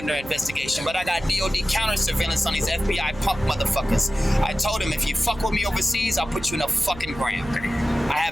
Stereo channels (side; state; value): right; noise; hum, 16 dB below the sound